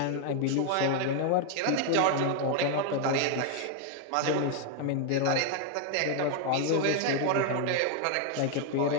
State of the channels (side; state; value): both; different; correlation 0.00